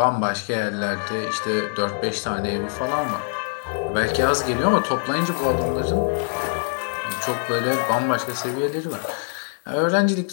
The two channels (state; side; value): silent; right; 63 dB below the other